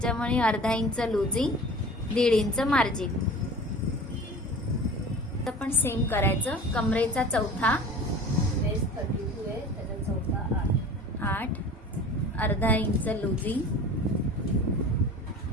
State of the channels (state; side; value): normal; both; correlation 0.40